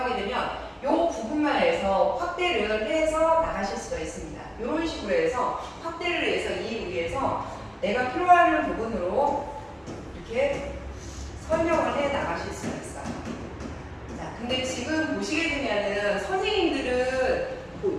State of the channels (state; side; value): identical; both; correlation 1.00